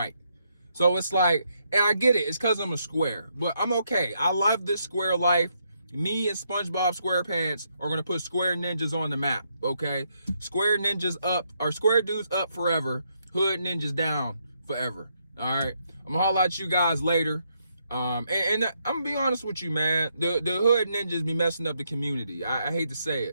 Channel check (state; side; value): inverted; both; correlation -0.77